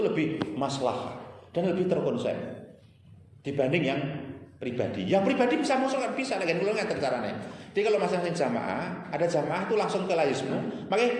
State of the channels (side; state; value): both; identical; correlation 1.00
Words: maslahat dan lebih terkonsep dibanding yang pribadi. Yang pribadi bisa masuk kan bisa, lagi kalau nggak caranya. Jadi kalau masing-masing jamaah, ada jamaah itu langsung ke layismu. Makanya